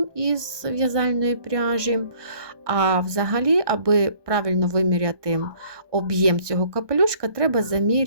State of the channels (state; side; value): late; left; 1.2 ms